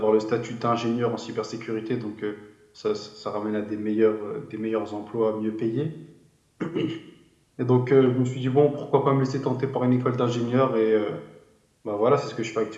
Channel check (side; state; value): both; identical; correlation 1.00